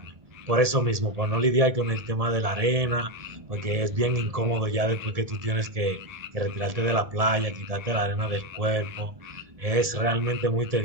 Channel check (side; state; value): left; late; 1.7 ms